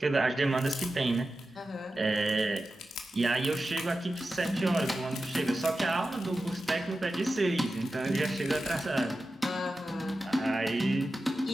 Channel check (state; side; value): normal; both; correlation 0.93